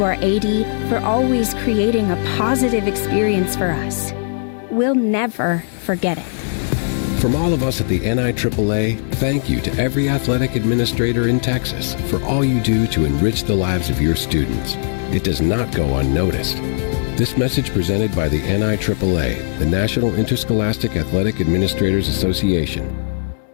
our AD for always creating a positive experience for us. We'll never forget it. From all of us at the NIAAA, thank you to every athletic administrator in Texas for all you do to enrich the lives of your students. It does not go unnoticed. This message presented by the NIAAA, the National Interscholastic Athletic Administrators Association.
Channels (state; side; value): silent; right; digital silence